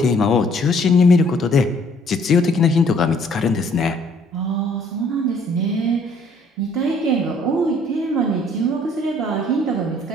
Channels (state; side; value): normal; both; correlation 0.61